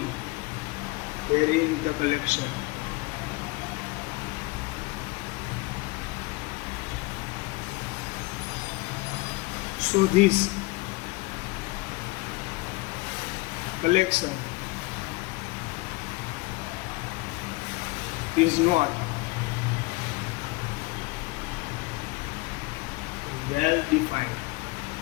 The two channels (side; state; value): right; quieter; 23.4 dB